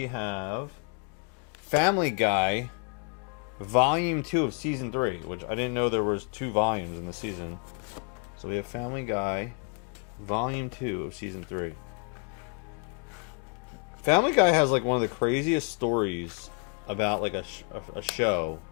have Family Guy Volume 2 of Season 3, which I didn't know there was 2 volumes in the season. So we have Family Guy Volume 2 of Season 3. Family Guy has like one of the craziest stories about like a show.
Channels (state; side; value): quieter; right; 36.1 dB